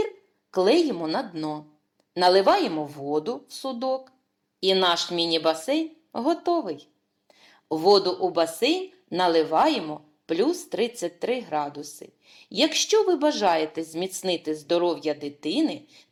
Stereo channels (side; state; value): both; identical; correlation 1.00